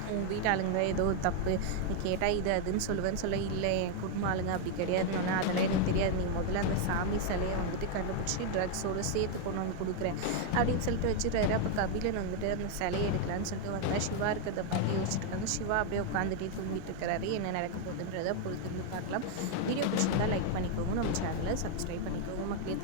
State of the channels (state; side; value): different; both; correlation 0.00